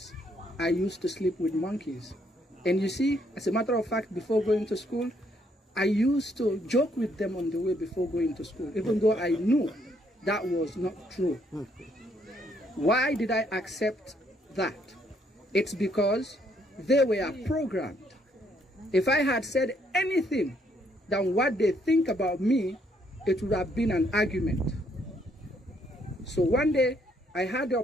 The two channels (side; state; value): both; normal; correlation 0.70